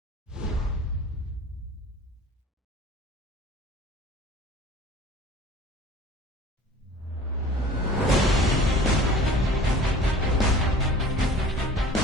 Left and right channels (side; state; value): both; normal; correlation 0.45